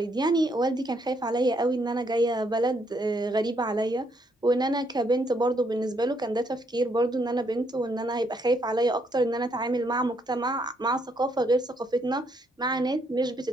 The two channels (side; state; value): both; normal; correlation 0.73